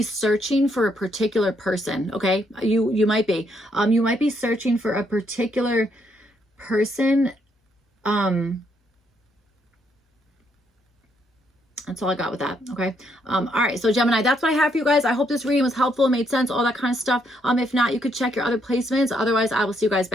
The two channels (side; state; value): both; normal; correlation 0.74